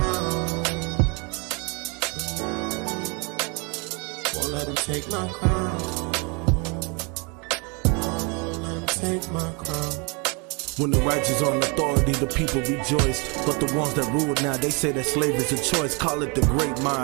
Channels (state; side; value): quieter; left; 32.0 dB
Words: Won't let them take my crown. Won't let them take my crown. When the righteous on authority, the people rejoice. But the ones that rule now, they say that slave is a choice. Call it the great